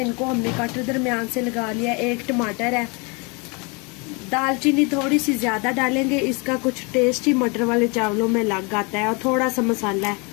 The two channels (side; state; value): right; quieter; 30.7 dB